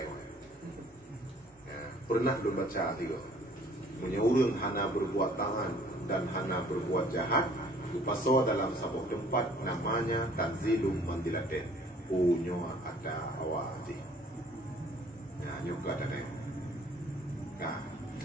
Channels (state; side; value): normal; both; correlation 0.56